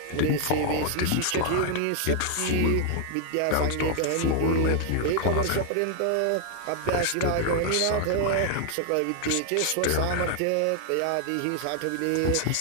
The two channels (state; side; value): different; both; correlation 0.00